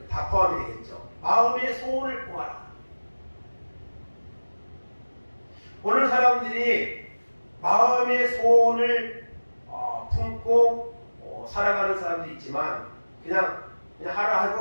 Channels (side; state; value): both; inverted; correlation -1.00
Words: 다 포함이 되겠죠. 마음의 소원을 품어라. 오늘 사람들이 마음의 소원을 품고 살아가는 사람도 있지만 그냥